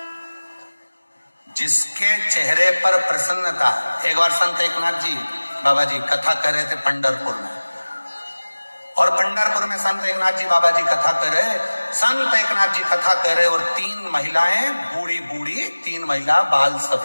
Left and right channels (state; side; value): inverted; both; correlation -1.00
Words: जिसके चेहरे पर प्रसन्नता। एक बार संत एकनाथ जी बाबा जी कथा कर रहे थे पंढरपुर में, और पंढरपुर में संत एकनाथ जी बाबा जी कथा कर रहे, संत एकनाथ जी कथा कर रहे, और 3 महिलाएं बूढ़ी बूढ़ी, 3 महिला बाल